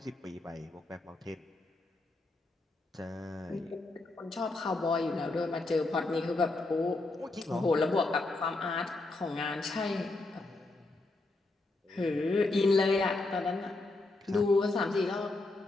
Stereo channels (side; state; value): right; quieter; 3.1 dB